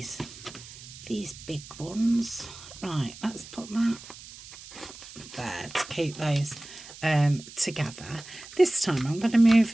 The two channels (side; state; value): right; noise; hiss, 16 dB below the sound